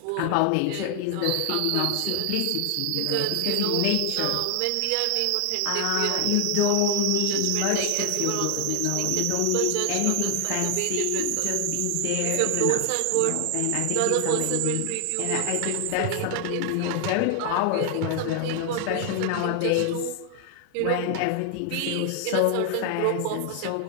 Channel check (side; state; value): both; different; correlation 0.00